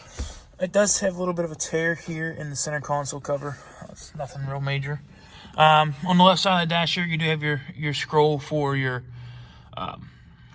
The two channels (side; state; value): both; identical; correlation 1.00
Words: It does have a little bit of a tear here in the center console cover. It's nothing real major. On the left side of the dash here, you do have your scroll for your